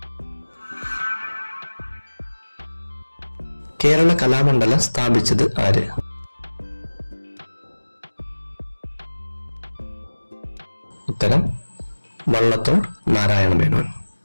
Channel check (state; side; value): inverted; both; correlation -1.00